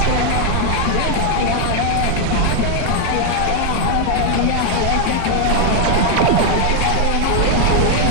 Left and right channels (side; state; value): both; different; correlation 0.00